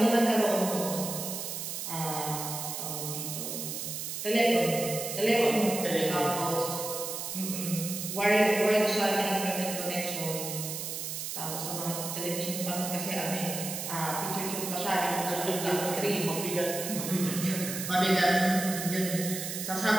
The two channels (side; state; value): right; noise; hiss, 5 dB below the sound